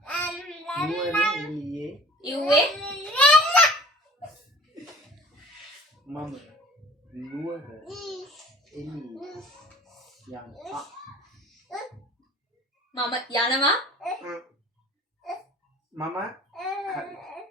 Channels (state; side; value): normal; both; correlation 0.47